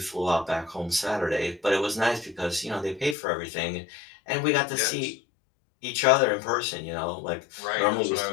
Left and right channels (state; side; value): drops out; right; at 3.2 s